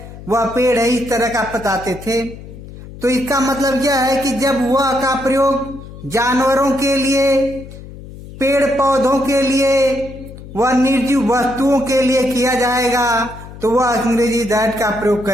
वह पेड़ है, इस तरह का बताते थे। तो इसका मतलब यह है कि जब वह का प्रयोग जानवरों के लिए, पेड़ पौधों के लिए, वह निर्जीव वस्तुओं के लिए किया जाएगा तो वह अंग्रेजी दैट का प्रयोग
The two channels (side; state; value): left; noise; hum, 15 dB below the sound